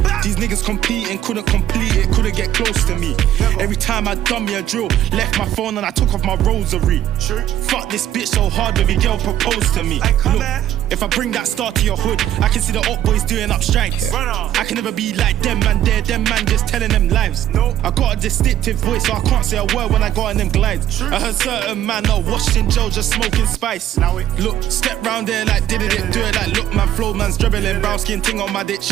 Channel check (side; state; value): left; quieter; 11.7 dB